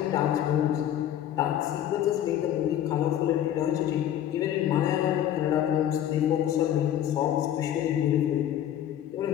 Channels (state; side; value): quieter; right; 11.1 dB